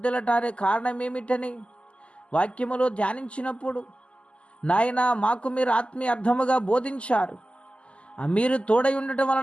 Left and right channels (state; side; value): late; right; 0.055 ms